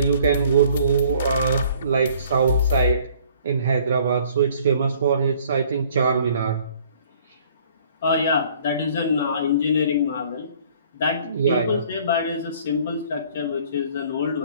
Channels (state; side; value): inverted; both; correlation -0.56